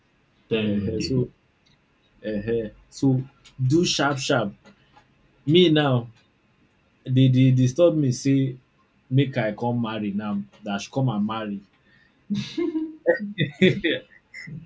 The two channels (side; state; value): both; identical; correlation 1.00